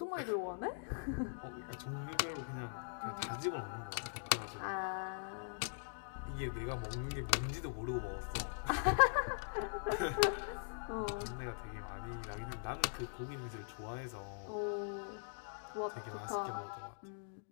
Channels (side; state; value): right; silent; digital silence